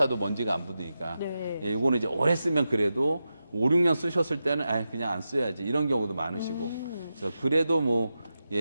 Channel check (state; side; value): inverted; both; correlation -0.90